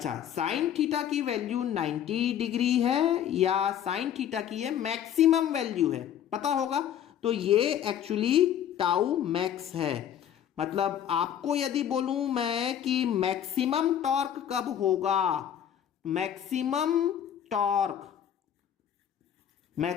साइन थीटा की वैल्यू 90 डिग्री है या साइन थीटा की है मैक्सिमम वैल्यू है, पता होगा। तो ये एक्चुअली टाउ मैक्स है, मतलब आपको यदि बोलूं मैं कि मैक्सिमम टॉर्क कब होगा, मैक्सिमम टॉर्क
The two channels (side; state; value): right; quieter; 9.9 dB